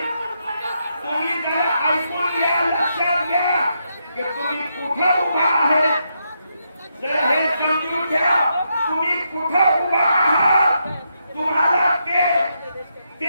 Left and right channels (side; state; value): both; inverted; correlation -0.81